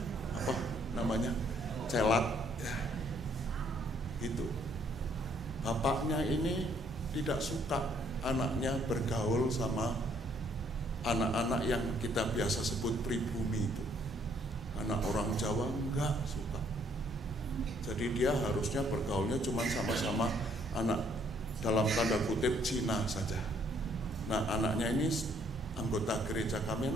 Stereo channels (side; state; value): both; normal; correlation 0.65